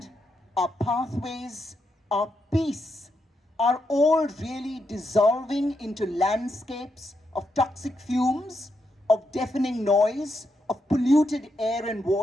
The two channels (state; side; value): normal; both; correlation 0.82